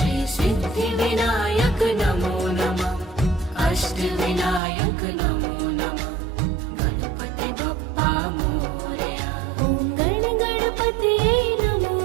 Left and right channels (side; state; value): left; drops out; at 4.6 s